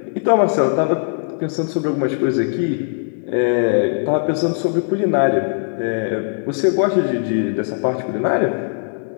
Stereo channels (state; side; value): silent; right; digital silence